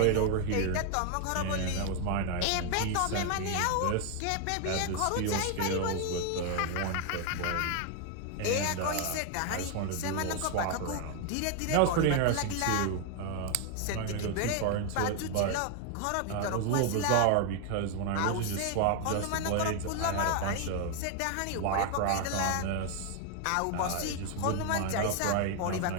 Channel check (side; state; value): both; different; correlation 0.00